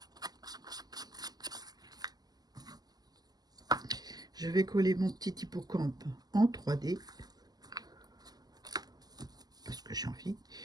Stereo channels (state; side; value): late; left; 0.19 ms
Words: Je vais coller mon petit hippocampe en 3D. Parce que j'ai envie.